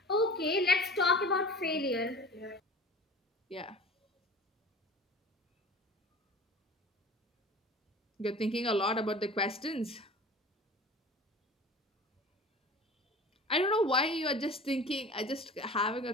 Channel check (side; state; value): both; normal; correlation 0.40